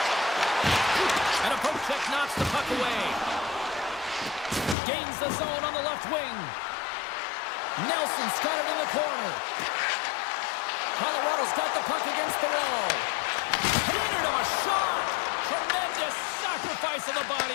And a poke check knocks the puck away. Gains the zone on the left wing. Nelson's got it in the corner. Colorado's got the puck against the wall. Hindered him a shot. Tremendous sacrifice of the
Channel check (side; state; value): right; drops out; at 4.8 s